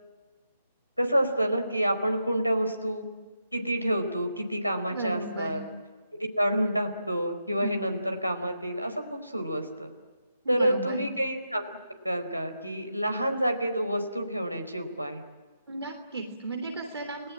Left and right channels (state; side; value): inverted; both; correlation -0.85